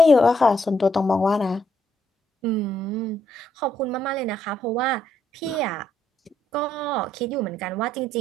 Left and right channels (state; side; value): normal; both; correlation 0.73